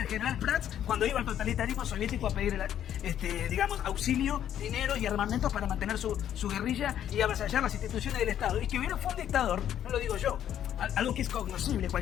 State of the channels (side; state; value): right; quieter; 10.4 dB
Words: general Prats cuando iba al totalitarismo soviético a pedir, digamos, auxilio, dinero y armamentos para mantener su guerrilla y avasallar las instituciones del Estado. Y que hubiera fue un dictador, no lo digo yo, algo que es cognoscible,